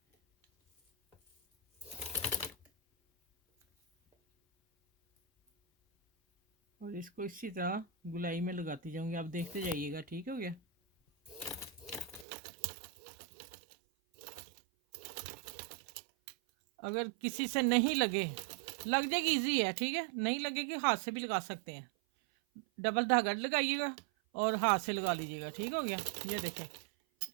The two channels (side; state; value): left; drops out; at 12.2 s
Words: और इसको इसी तरह गुलाई में लगाती जाऊँगी, आप देखते जाइएगा, ठीक हो गया। अगर किसी से नहीं लगे, लग जाएगी, इजी है, ठीक है। नहीं लगेगी हाथ से भी लगा सकते हैं। डबल धागा लगाइएगा और हाथ से लगा लीजिएगा, ठीक हो गया। ये देखें